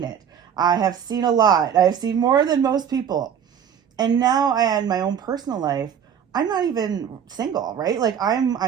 it. I have seen a lot. I've seen more than most people. And now I in my own personal life, I'm not even single, right? Like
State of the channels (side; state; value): left; quieter; 8.3 dB